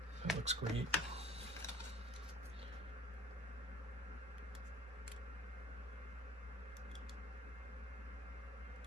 That looks great.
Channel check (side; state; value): both; normal; correlation 0.47